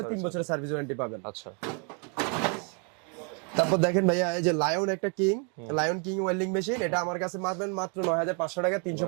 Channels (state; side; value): quieter; left; 37.8 dB